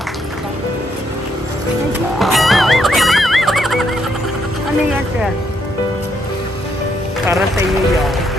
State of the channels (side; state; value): both; normal; correlation 0.75